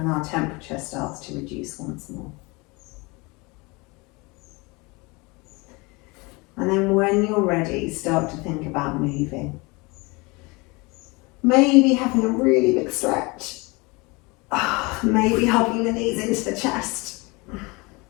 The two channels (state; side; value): quieter; right; 26.3 dB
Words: our temperature starts to reduce once more. And then when you're ready, start to think about moving. Maybe having a really big stretch. Maybe hugging the knees into the chest.